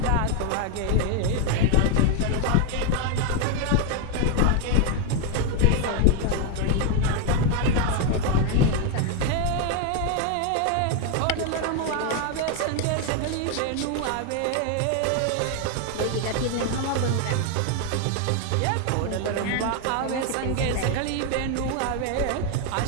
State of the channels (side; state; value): both; different; correlation 0.01